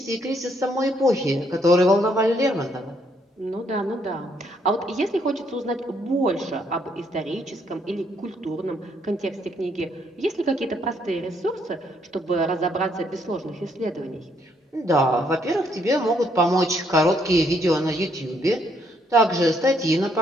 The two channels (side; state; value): both; normal; correlation 0.71